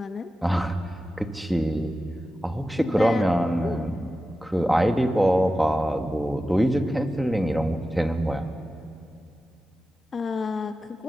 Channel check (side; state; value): both; normal; correlation 0.93